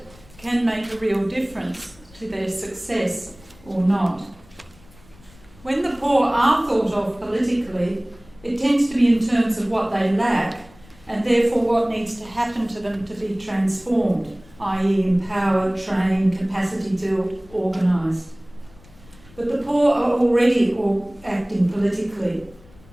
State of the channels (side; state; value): left; noise; rumble, 25 dB below the sound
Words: can make a real difference to their success or not. When the poor are thought of politically, it tends to be in terms of what they lack and therefore what needs to happen to them to be transformed, i.e. empowered, trained, capacity built, organised. But the poor are already acting politically,